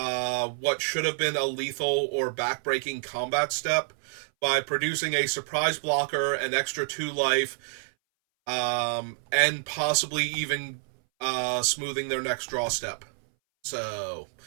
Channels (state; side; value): silent; left; 59 dB below the other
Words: should have been a lethal or backbreaking combat step by producing a surprise blocker, an extra 2 life, and possibly even smoothing their next draw step. So